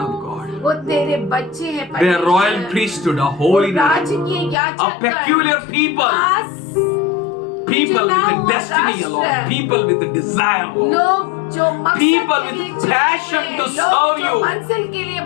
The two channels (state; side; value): drops out; right; at 4.5 s